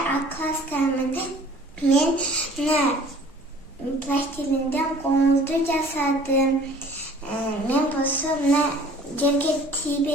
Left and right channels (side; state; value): both; normal; correlation 0.50